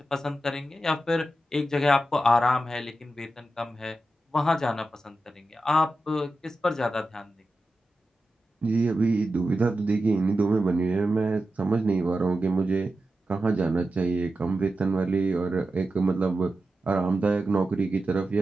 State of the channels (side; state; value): both; normal; correlation 0.91